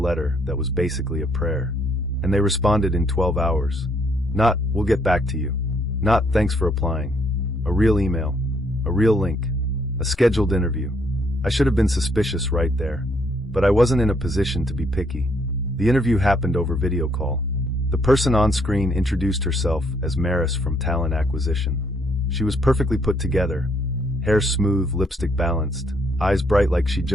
that was basically a prayer. And they responded in 12 hours. Not, "We'll get back to you." Not, "Thanks for applying." A real email. A real link. A scheduled interview. I should have been suspicious right there. But I wasn't in a position to be picky. The interview happened over video call. The person on screen introduced herself as Maris from Talent Acquisition. She was perfectly put together. Hair smooth, lipstick balanced. Eyes bright like she'd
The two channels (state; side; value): normal; both; correlation 0.69